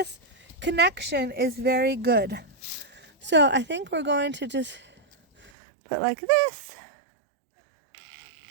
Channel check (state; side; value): drops out; left; at 5.5 s